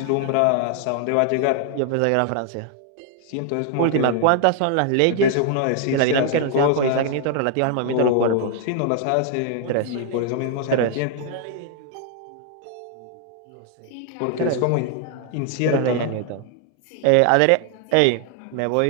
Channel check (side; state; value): both; different; correlation 0.00